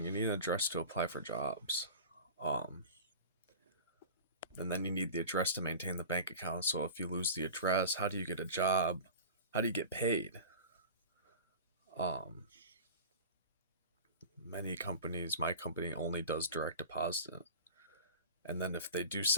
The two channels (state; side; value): inverted; both; correlation -0.37